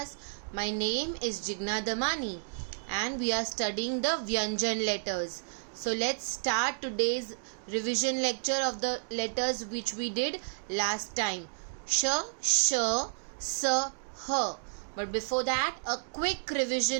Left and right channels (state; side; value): silent; left; digital silence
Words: My name is Jigna Damani and we are studying the Vyanjan letters. So let's start today's revision lecture of the letters which we did last time. Sh, sh, s, h. But before that, a quick